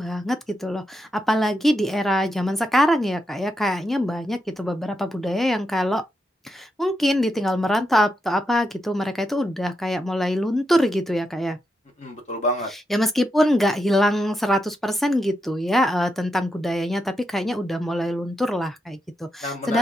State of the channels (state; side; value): normal; both; correlation 0.84